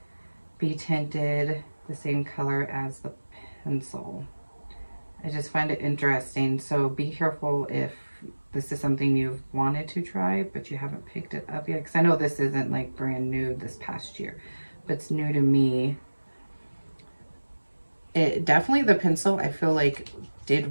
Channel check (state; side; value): inverted; both; correlation -1.00